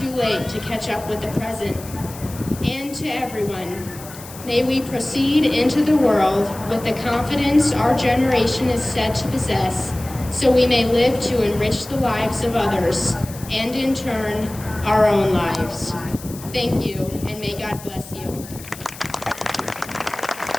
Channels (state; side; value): noise; left; hiss, 16 dB below the sound